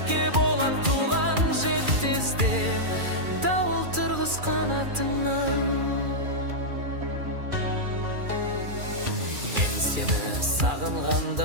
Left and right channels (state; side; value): late; left; 2.4 ms